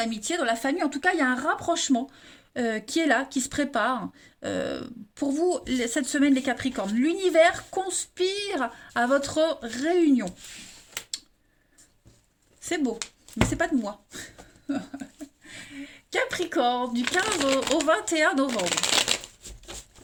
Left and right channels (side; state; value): both; identical; correlation 1.00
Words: dans la famille. En tout cas, il y a un rapprochement qui est là, qui se prépare. Pour vous, cette semaine, les Capricornes, l'univers conspire à votre réunion. C'est beau, mais c'est pas de moi. Capricorne, du 15 au 21 novembre.